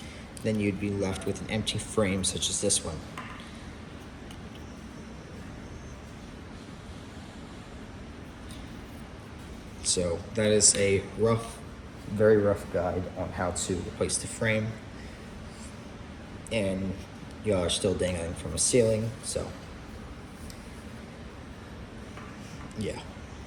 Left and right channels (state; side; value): identical; both; correlation 1.00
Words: Then you'd be left with an empty frame such as this one. So that is a rough, very rough guide on how to replace the frame. And y'all are still dangling from a ceiling, so yeah.